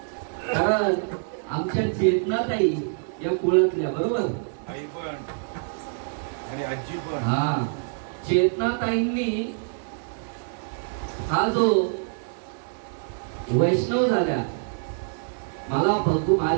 कारण आमच्या चेतनाताई या कुळातल्या, बरोबर? आई पण आणि आजी पण। हा, चेतनाताईंनी हा जो वैष्णव झाल्या, मला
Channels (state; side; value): silent; left; 61 dB below the other